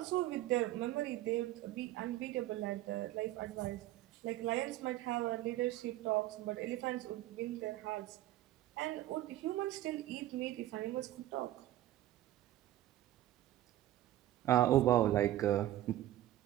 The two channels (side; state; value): left; quieter; 14.2 dB